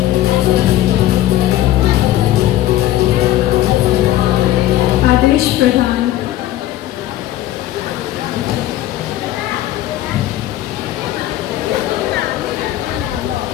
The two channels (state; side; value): quieter; right; 14.2 dB